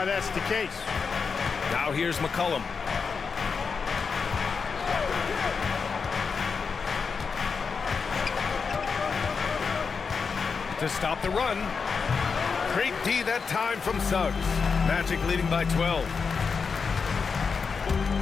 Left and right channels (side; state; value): right; quieter; 5.4 dB